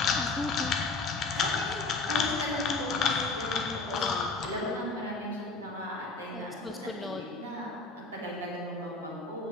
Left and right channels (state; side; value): quieter; right; 3.7 dB